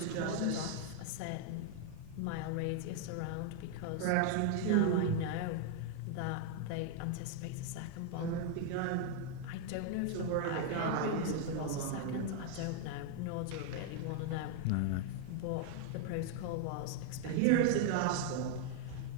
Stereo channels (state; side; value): different; both; correlation 0.00